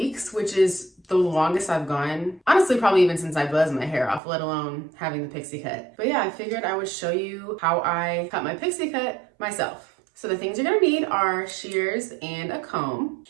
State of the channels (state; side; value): drops out; left; at 4.2 s